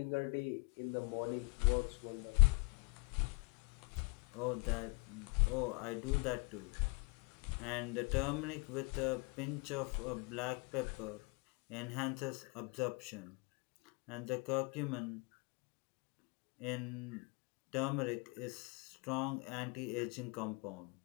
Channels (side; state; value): right; quieter; 30.8 dB